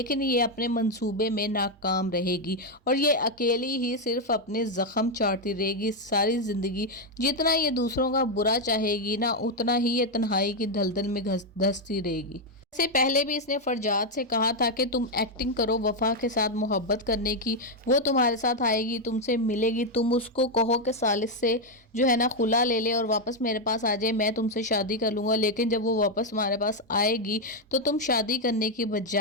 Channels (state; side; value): normal; both; correlation 0.02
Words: ये अपने मंसूबे में नाकाम रहेगी और ये अकेली ही सिर्फ अपने ज़ख्म चाटती रहेगी सारी ज़िंदगी। जितना ये दूसरों का बुरा चाहेगी ना, उतना ही ये तन्हाई की दलदल में धंसती रहेगी। से पहले भी इसने फरजाद से कहा था कि तुम एक्टिंग करो वफा के साथ मोहब्बत करने की, वो तुम्हारे साथ आएगी, तुमसे मिलेगी, तुम उसको कहो कि सालिस से जो है ना खुला ले ले और वापस मेरे पास आ जाए, मैं तुमसे शादी कर लूँगा। लेकिन जब वो वापस तुम्हारे पास आएगी तो तुम शादी करने की